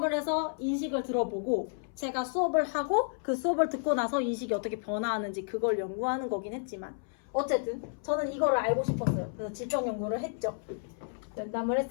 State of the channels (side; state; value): right; silent; 57 dB below the other